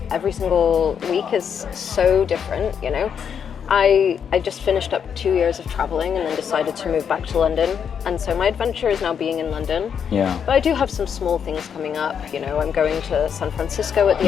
Every single week is so different, you know. I just finished up 2 years of traveling and then decided to move back to London. And so my adventure is now being in London. Yeah. But I do have some small things coming up. You know, I'm going to San Francisco at the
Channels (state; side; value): quieter; right; 7.6 dB